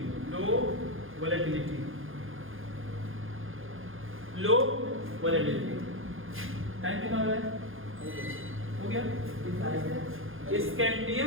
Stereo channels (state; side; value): late; left; 0.59 ms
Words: लो वोलेटिलिटी, लो वोलेटिलिटी। टाइम कितना हो रहा है? हो गया?